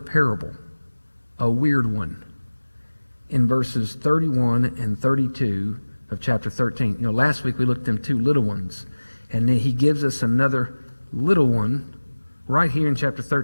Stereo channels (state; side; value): inverted; both; correlation -1.00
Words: a weird one, in verses 31 and 32 of chapter 13. You know, last week we looked at them two little ones, and then he gives us another little one right here in chapter